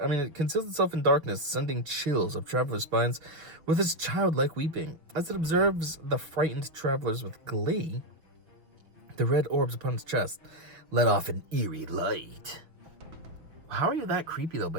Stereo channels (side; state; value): left; late; 6.1 ms